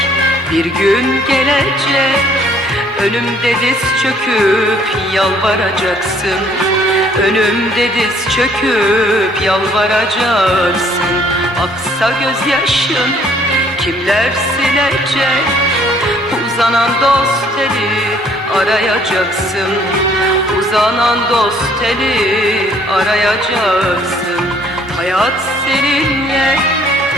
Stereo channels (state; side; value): normal; both; correlation 0.61